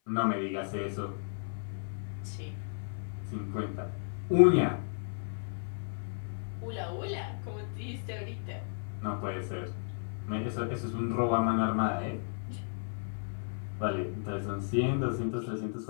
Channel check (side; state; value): right; silent; 55 dB below the other